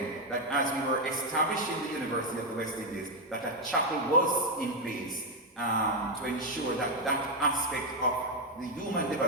that as we were establishing the University of the West Indies, that a chapel was in place to ensure that that aspect of the human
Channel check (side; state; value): both; normal; correlation 0.03